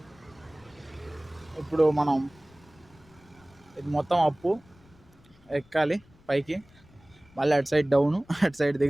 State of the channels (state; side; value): noise; left; rumble, 28 dB below the sound